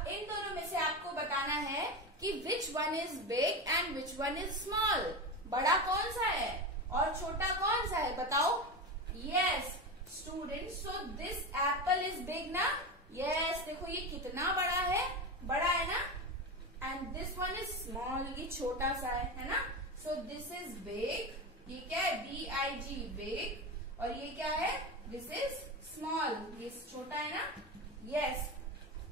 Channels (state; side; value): normal; both; correlation 0.21